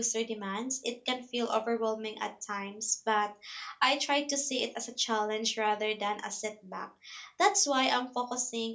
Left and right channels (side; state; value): both; identical; correlation 1.00